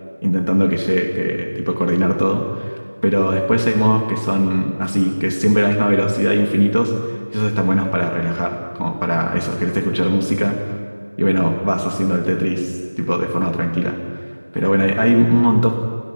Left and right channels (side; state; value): both; inverted; correlation -1.00